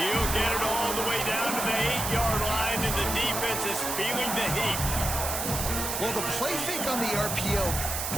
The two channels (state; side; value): noise; right; hiss, 2 dB below the sound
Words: get it all the way down to the 8-yard line, and the defense is feeling the heat. Well, the play fake on the RPO